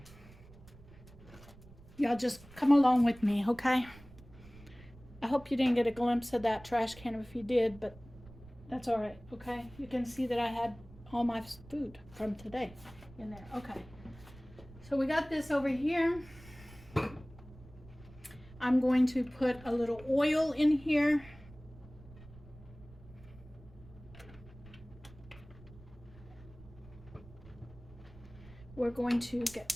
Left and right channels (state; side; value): noise; right; rumble, 20 dB below the sound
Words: Y'all just come along with me, okay? I hope you didn't get a glimpse of that trash can. If you did, but that's all right, okay? You can see that I had all my food from today in there. Okay. So we got this over here. I'm going to put a little oil in here. We're going to get